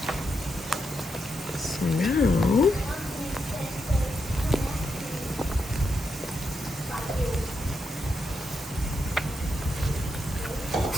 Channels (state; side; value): normal; both; correlation 0.83